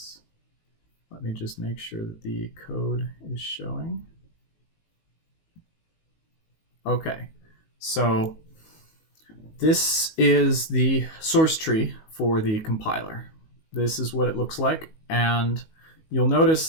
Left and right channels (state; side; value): late; right; 19 ms